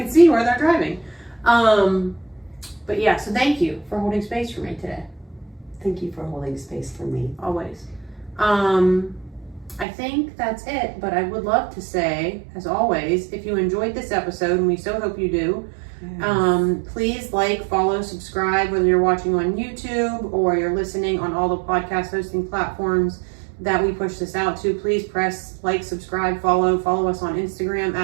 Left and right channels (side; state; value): left; drops out; at 9.9 s